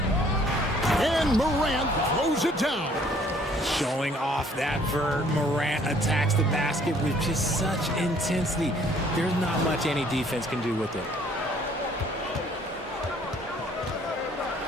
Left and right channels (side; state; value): both; normal; correlation 0.59